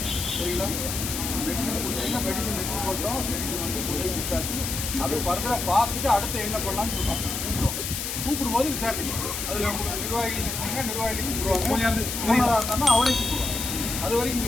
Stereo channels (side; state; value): left; noise; hiss, 4 dB below the sound